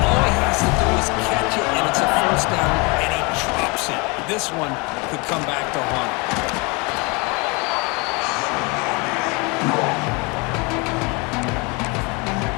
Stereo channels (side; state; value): right; quieter; 28.8 dB